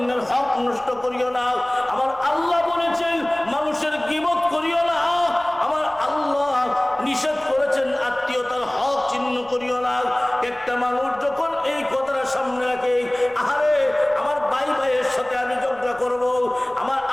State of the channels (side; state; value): left; noise; rumble, 27 dB below the sound